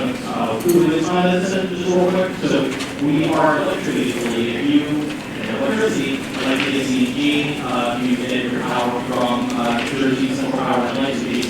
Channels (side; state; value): both; identical; correlation 1.00